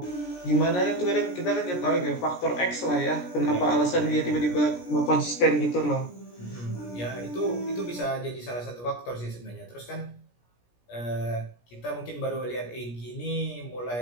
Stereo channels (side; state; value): right; late; 17 ms